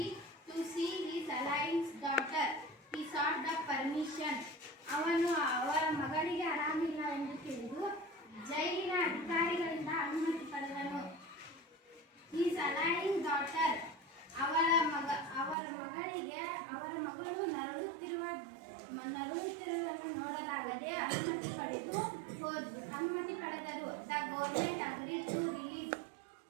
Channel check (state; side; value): drops out; left; at 15.6 s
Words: to see his alliance daughter. He sought the permission. ಅವನು ಅವರ ಮಗಳಿಗೆ ಆರಾಮಿಲ್ಲ ಎಂದು ತಿಳಿದು ಜೈಲಿನ ಅಧಿಕಾರಿಗಳಿಂದ ಅನುಮತಿ ಪಡೆದನು. His alliance daughter, ಅವರ ಮಗಳಿಗೆ ಅವರ ಮಗಳು ನರಳುತ್ತಿರುವುದನ್ನು ನೋಡಲಾಗದೆ ಅನುಮತಿ ಪಡೆದರು. The government agreed to release.